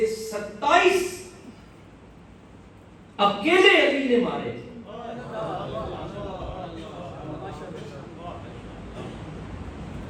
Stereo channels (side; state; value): both; identical; correlation 1.00